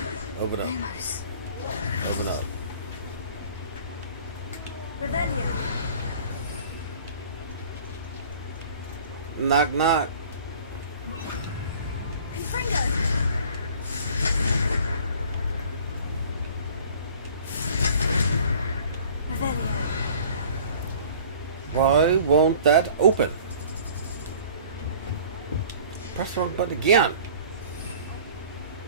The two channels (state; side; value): inverted; both; correlation -0.49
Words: Open up. Open up. Revelio. Knock knock. Confringo! Revelio. Why won't that open? Press the wrong button again.